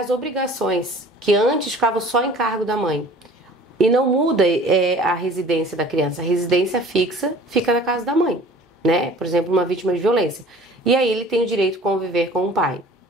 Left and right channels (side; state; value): both; normal; correlation 0.47